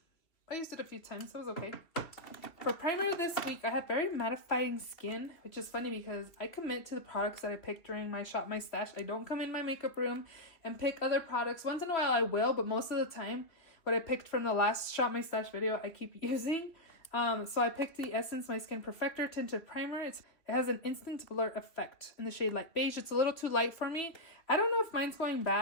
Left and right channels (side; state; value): right; late; 2.9 ms